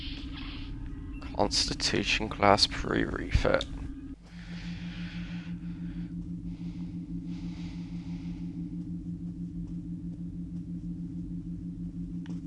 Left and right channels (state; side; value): identical; both; correlation 1.00